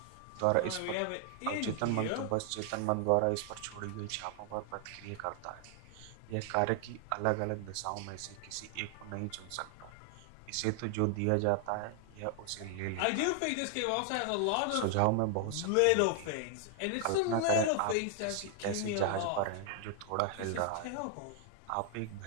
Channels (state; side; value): different; both; correlation 0.00